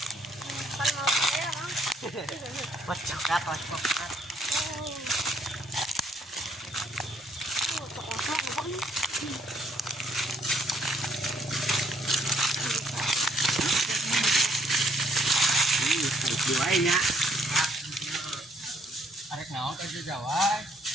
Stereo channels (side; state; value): both; normal; correlation 0.67